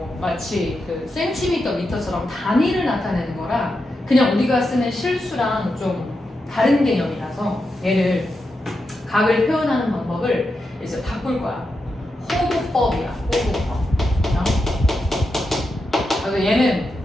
마치 그 센티미터, 미터처럼 단위를 나타내는 거라 그냥 우리가 쓰는 실수랑 좀 다른 개념이라서 얘를 각을 표현하는 방법을 이제 바꿀 거야. 호도법이야. 호도법. 그래서 얘는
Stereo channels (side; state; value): both; normal; correlation 0.87